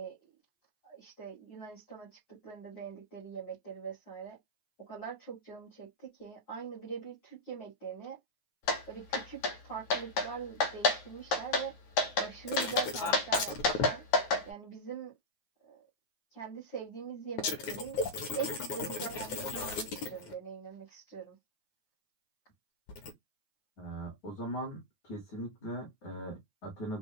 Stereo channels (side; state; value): right; late; 9.5 ms